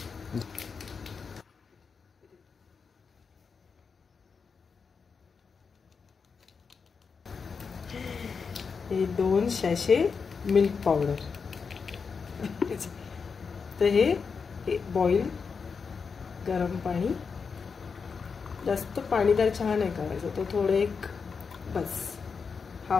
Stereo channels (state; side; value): quieter; right; 5.5 dB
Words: हे 2 सॅशे मिल्क पावडर. तर हे बॉईल गरम पाणी, जास्त पाणीदार चहा नाही करायचा, तो थोडं एक बस